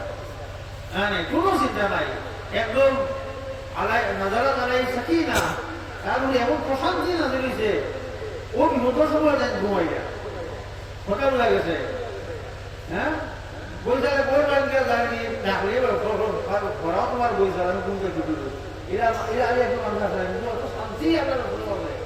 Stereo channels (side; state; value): both; identical; correlation 1.00